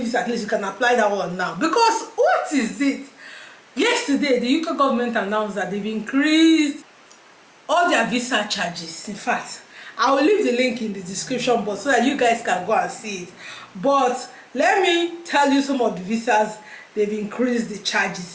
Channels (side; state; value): both; identical; correlation 1.00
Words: at least you can apply that one now. Because what is it? Yesterday, the UK government announced that they've increased all their visa charges. In fact, I will leave the link in the description box so that you guys can go and see it. But let me tell you some of the visas they've increased the